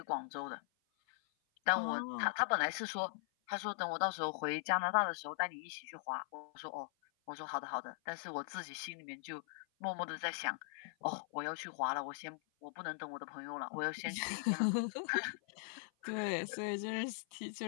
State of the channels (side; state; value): right; silent; 51 dB below the other